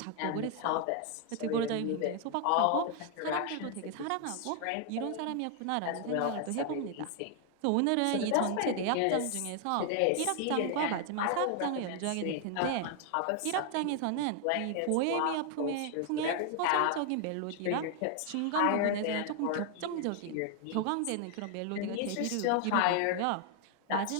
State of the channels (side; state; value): both; different; correlation 0.00